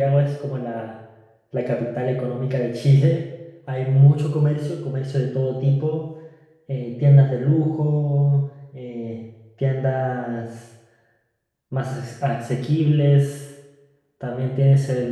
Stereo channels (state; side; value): identical; both; correlation 1.00